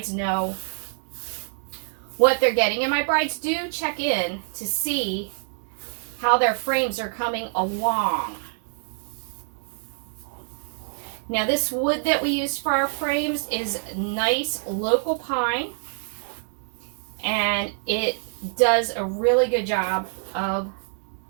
know what they're getting. And my brides do check in to see how their frames are coming along. Now this wood that we use for our frames is nice local pine, and it does a really good job of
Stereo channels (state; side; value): silent; left; digital silence